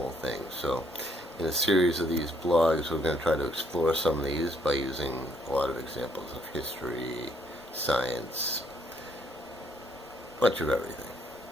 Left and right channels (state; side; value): normal; both; correlation 0.68